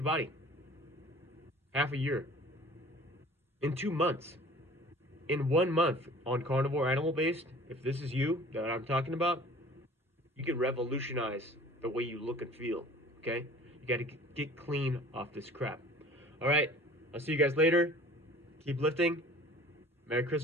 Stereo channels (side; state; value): both; normal; correlation 0.47